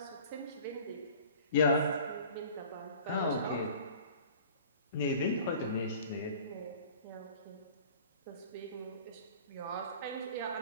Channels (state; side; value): inverted; both; correlation -0.45